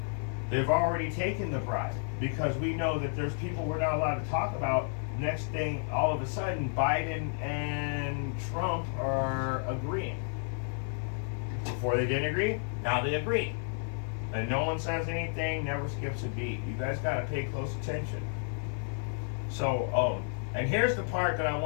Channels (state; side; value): silent; right; 57 dB below the other